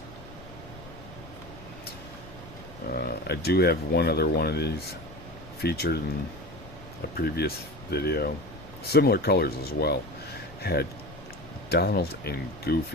I do have one other one of these featured in a previous video. Similar colors as well. Had Donald and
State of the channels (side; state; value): left; noise; rumble, 18 dB below the sound